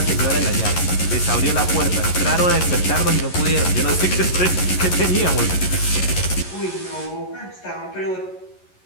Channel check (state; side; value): late; right; 11 ms